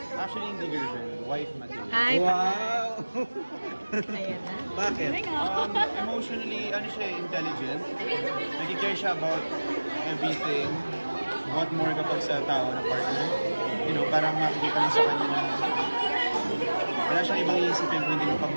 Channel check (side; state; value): both; inverted; correlation -1.00